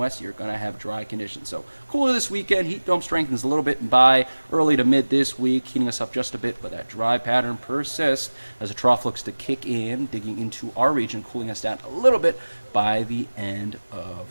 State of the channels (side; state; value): both; inverted; correlation -1.00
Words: you're going to have dry conditions. So cooler this weekend. Heat dome strengthens a little bit by early to mid this week, heating us up just a bit, but that dry pattern persists as a trough looks to kick in, digging into our region, cooling us down a little bit by the end of